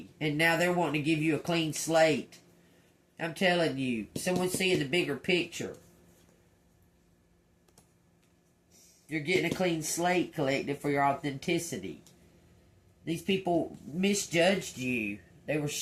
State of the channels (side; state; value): both; identical; correlation 1.00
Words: and now they're wanting to give you a clean slate. I'm telling you, someone's seeing the bigger picture. You're getting a clean slate, collective, for your authenticity. These people misjudged you. They were